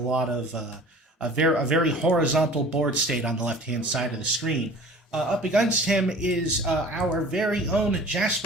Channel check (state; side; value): normal; both; correlation 0.44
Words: of a very horizontal board state on the left-hand side of the screen. Up against him is our very own